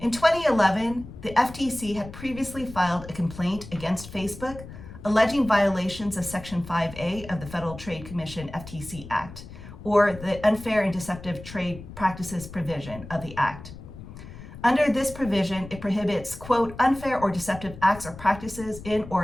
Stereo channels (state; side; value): noise; left; rumble, 14 dB below the sound